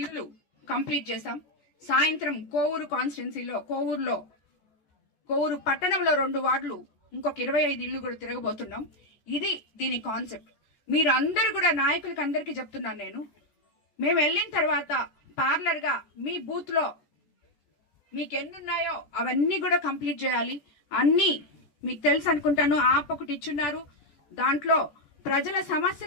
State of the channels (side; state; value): right; late; 14 ms